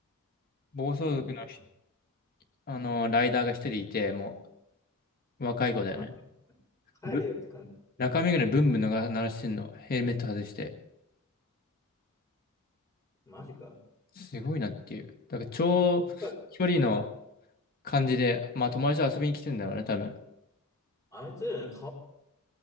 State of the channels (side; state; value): right; quieter; 3.0 dB